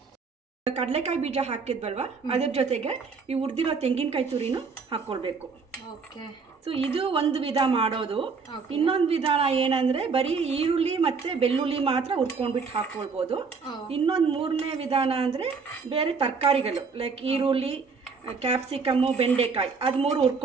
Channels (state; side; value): quieter; left; 5.0 dB